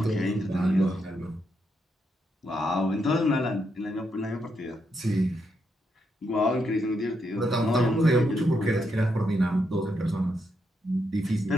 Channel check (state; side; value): normal; both; correlation 0.80